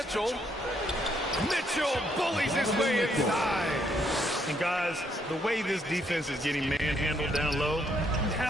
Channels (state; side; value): normal; both; correlation 0.72